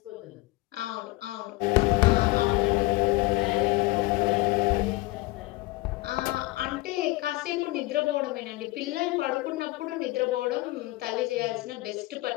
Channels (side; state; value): right; quieter; 20.8 dB